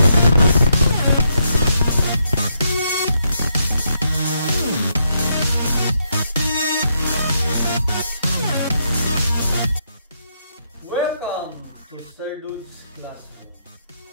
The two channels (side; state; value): both; inverted; correlation -0.78